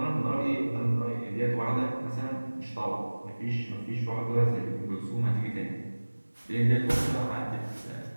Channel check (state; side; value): inverted; both; correlation -1.00